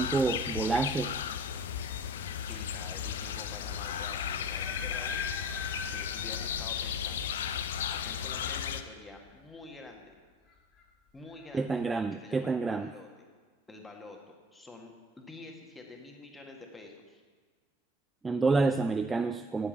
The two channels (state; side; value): normal; both; correlation 0.44